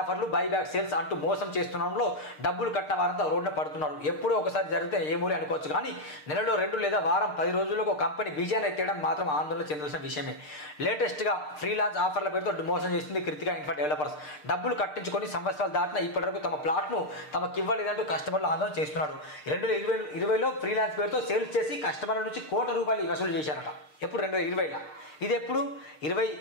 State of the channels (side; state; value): right; late; 6.6 ms